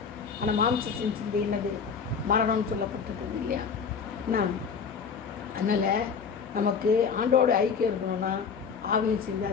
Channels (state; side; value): quieter; right; 6.1 dB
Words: ஆனால் மாம்சத்தின் சிந்தை என்னது? மரணம்னு சொல்லப்பட்டிருக்குது இல்லையா. அதனால் நமக்கு ஆண்டோட ஐக்கியம் இருக்கணும்னா ஆவியின் சிந்தை